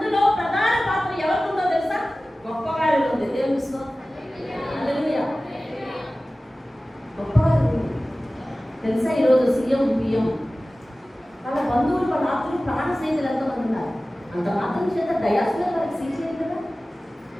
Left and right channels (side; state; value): both; normal; correlation 0.97